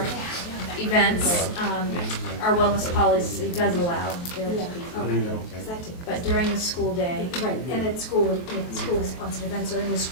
events, our wellness policy does allow there to Yeah, be. okay. Exactly. But during the school day, Right, and at school, if school sponsored events are in the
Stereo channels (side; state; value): right; late; 23 ms